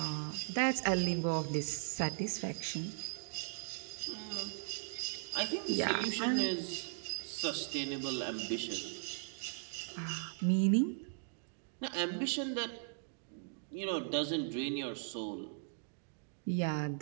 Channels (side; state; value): left; silent; digital silence